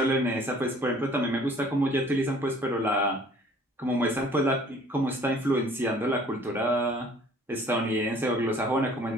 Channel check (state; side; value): normal; both; correlation 0.54